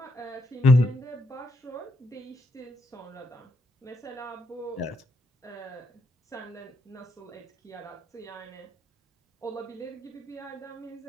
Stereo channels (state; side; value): normal; both; correlation 0.77